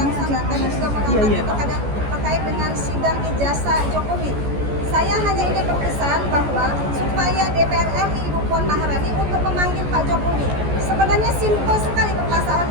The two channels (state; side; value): late; left; 14 ms